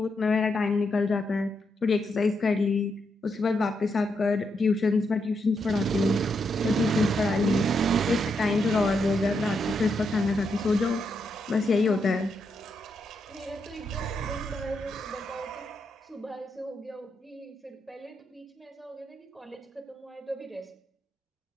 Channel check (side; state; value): both; normal; correlation 0.81